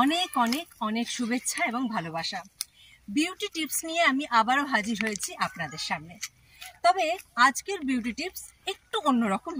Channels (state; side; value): identical; both; correlation 1.00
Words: অনেক অনেক অনেক শুভেচ্ছা এবং ভালোবাসা। বিউটি টিপস নিয়ে আমি আবারও হাজির হয়েছি আপনাদের সামনে। তবে আজকের বিউটি টিপস একটু অন্যরকম